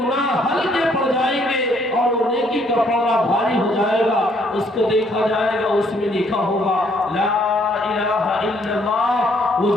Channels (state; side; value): normal; both; correlation 0.66